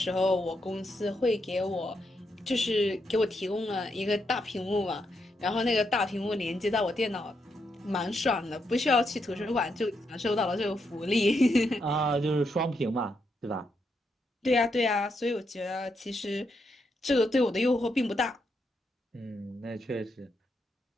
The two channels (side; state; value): both; normal; correlation 0.81